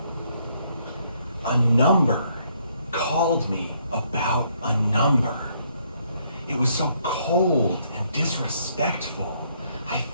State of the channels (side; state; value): both; inverted; correlation -0.70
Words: a number called me about a number. It was so cold and disrespectful. I